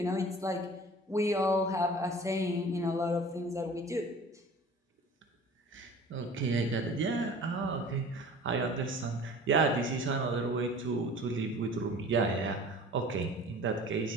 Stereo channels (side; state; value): both; normal; correlation 0.44